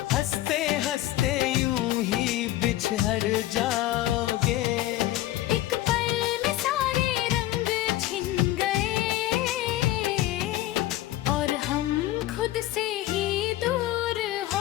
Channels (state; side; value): quieter; right; 15.0 dB